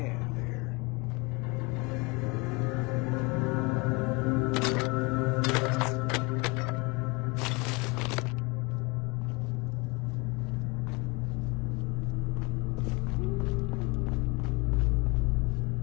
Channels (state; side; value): quieter; right; 27.4 dB